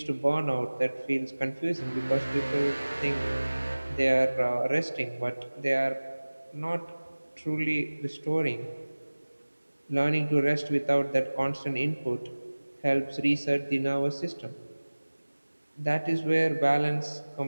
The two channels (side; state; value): both; inverted; correlation -1.00